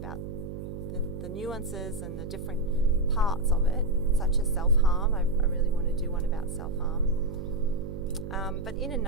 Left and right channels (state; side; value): noise; right; hum, 8 dB below the sound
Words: the nuances and the different parts of it, such as self-harm. I really want to do one about self-harm. But in a